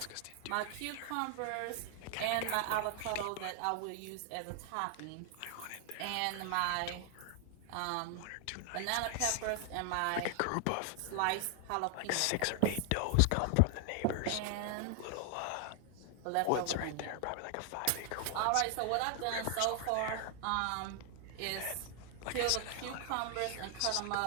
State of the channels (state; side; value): different; both; correlation 0.00